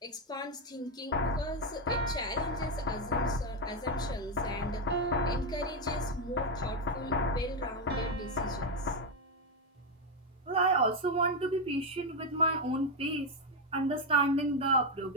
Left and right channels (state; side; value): normal; both; correlation 0.05